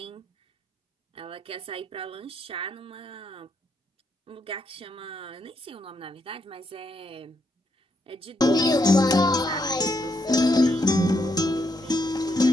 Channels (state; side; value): normal; both; correlation 0.78